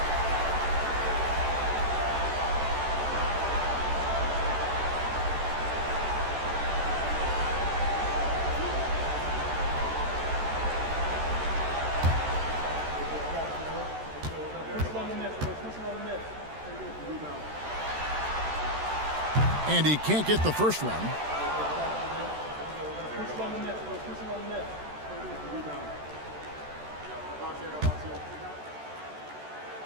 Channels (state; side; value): late; left; 13 ms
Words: And he can't get the first one.